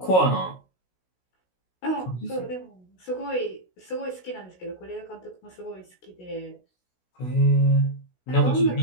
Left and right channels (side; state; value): right; late; 16 ms